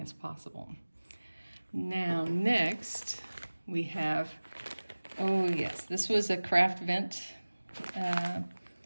as possible. Now next we have, oh yes, this was a craft vent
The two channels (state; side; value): inverted; both; correlation -1.00